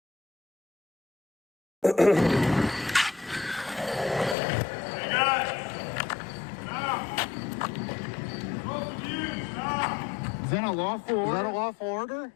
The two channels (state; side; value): drops out; right; at 4.4 s